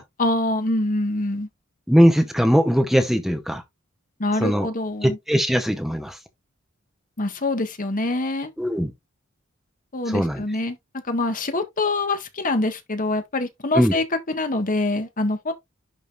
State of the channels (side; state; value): both; normal; correlation 0.72